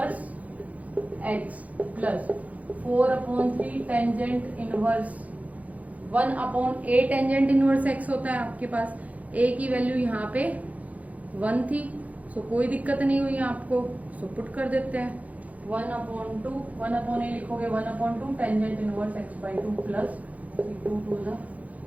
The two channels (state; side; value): late; left; 0.071 ms